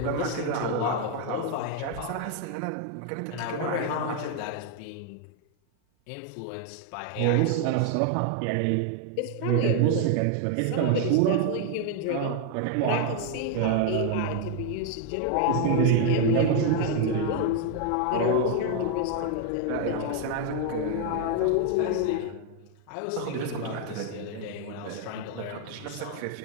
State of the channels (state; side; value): different; both; correlation 0.00